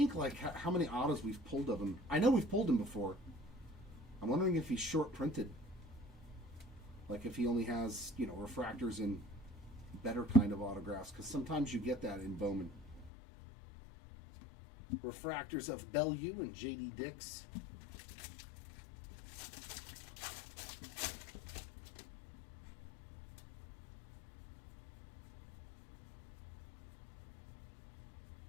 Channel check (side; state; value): right; drops out; at 13.1 s